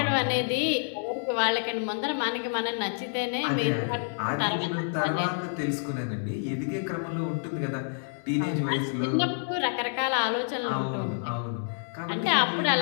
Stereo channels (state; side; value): silent; right; digital silence